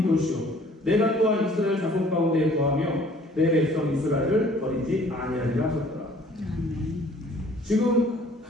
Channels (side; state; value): both; normal; correlation 0.55